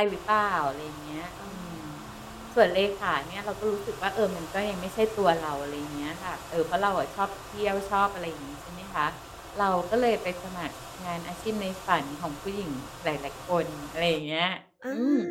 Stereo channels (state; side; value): identical; both; correlation 1.00